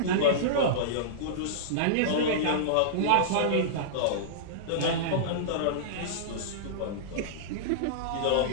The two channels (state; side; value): different; both; correlation -0.03